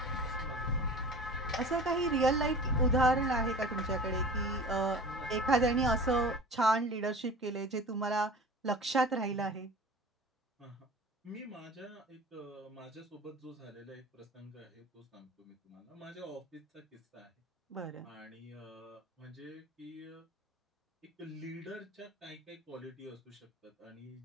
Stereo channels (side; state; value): both; normal; correlation 0.39